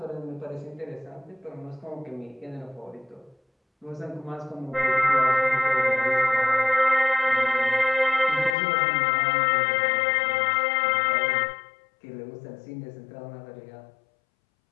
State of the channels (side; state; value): right; drops out; at 8.6 s